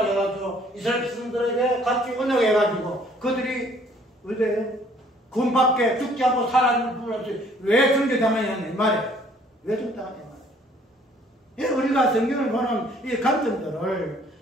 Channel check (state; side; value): normal; both; correlation 0.59